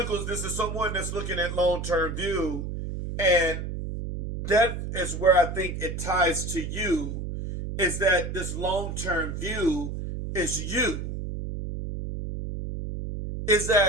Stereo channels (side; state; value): right; noise; hum, 5 dB below the sound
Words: this is someone that's looking at long-term view, and that is where I think it ties to you, is that this long-term view is you. Is